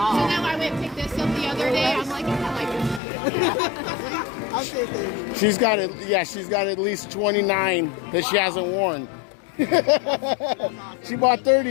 I went and picked this up the other day. I'm like, I'll say 30. She's got it. Yeah, she's got at least 29 that she hasn't worn. She bought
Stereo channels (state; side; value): drops out; right; at 3.0 s